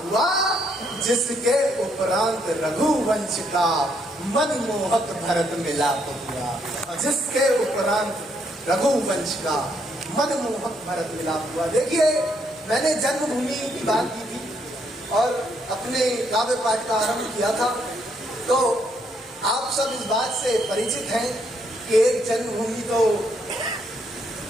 हुआ। जिसके उपरांत रघुवंश का मनमोहक भरत मिलाप हुआ। जिसके उपरांत रघुवंश का मनमोहक भरत मिलाप हुआ। देखिए, मैंने जन्मभूमि की बात की थी और अपने काव्य पाठ का आरंभ किया था। तो आप सब इस बात से परिचित हैं कि एक जन्मभूमि तो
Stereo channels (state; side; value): normal; both; correlation 0.73